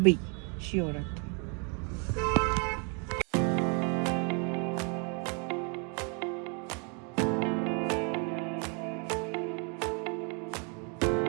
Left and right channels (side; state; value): left; quieter; 37.0 dB